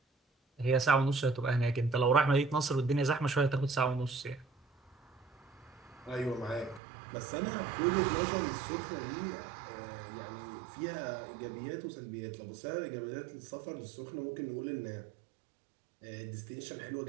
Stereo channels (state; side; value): drops out; left; at 6.8 s